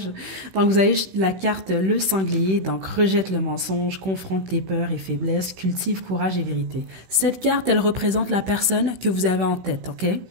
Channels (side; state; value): left; late; 16 ms